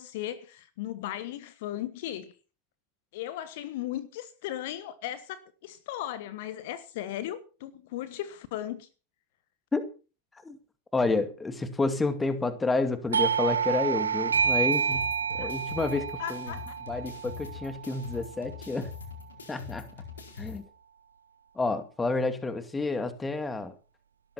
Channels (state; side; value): normal; both; correlation 0.19